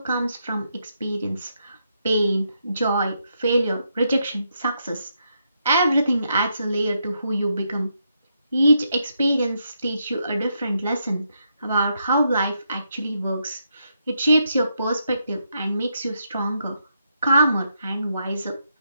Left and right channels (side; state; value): both; inverted; correlation -0.80